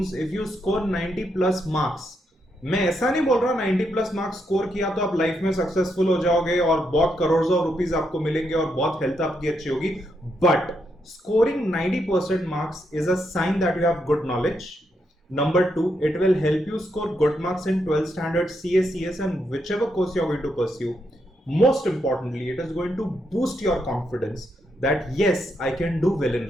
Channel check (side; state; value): both; normal; correlation 0.80